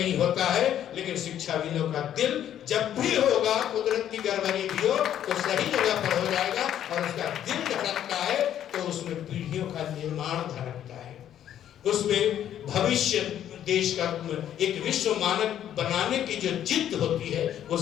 होता है, लेकिन शिक्षाविदों का दिल जब भी होगा, कुदरत की गड़बड़ी भी हो तो सही जगह पर हो जाएगा, और उसका दिल धड़कता है तो उसमें पीढ़ियों का निर्माण धड़कता है, उसमें भविष्य देश का एक विश्व मानक बनाने की जो जिद होती है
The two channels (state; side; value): quieter; right; 10.6 dB